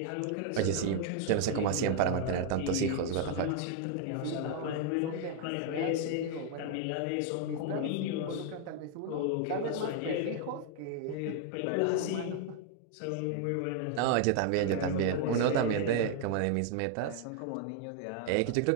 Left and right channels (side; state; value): both; different; correlation 0.00